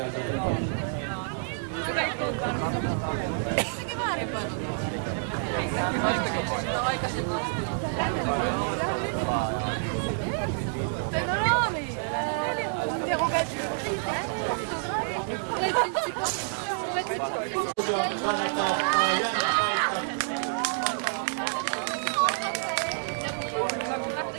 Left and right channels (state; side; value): silent; left; digital silence